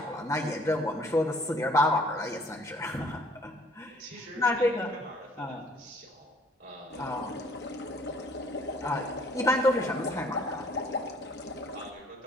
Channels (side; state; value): both; normal; correlation 0.57